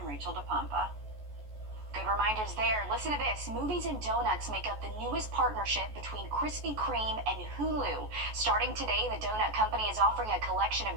Rachel DePompa. Good reminders there. Listen to this. Movies and donuts make up the newest partnership between Krispy Kreme and Hulu. Starting today, the donut company is offering a collection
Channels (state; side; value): late; left; 14 ms